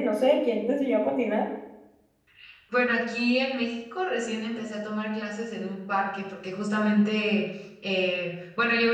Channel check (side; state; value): both; identical; correlation 1.00